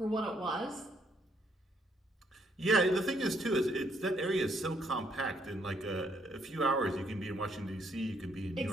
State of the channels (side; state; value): both; normal; correlation 0.71